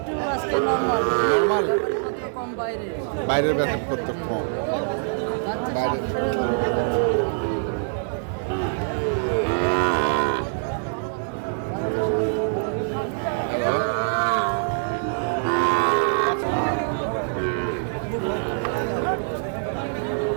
আজকে নরমাল। নরমাল? ব্যাপারপত্র কম বাইরে। বাইরের বেতন কত কম? বাচ্চা বাইরে। 700 হ্যালো,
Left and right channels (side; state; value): left; silent; digital silence